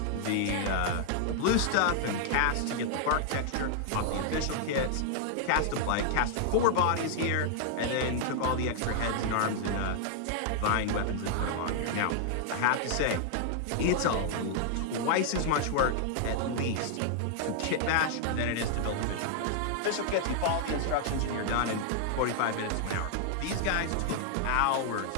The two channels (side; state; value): both; different; correlation 0.00